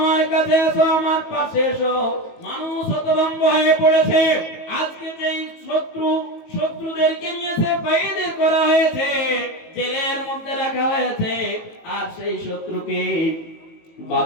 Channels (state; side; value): late; right; 19 ms